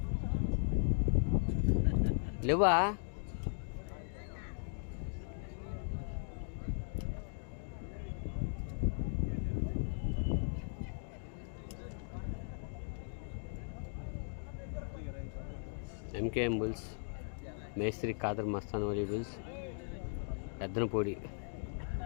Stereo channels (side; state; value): right; silent; digital silence